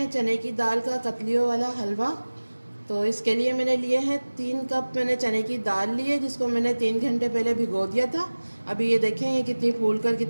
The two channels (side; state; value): both; inverted; correlation -1.00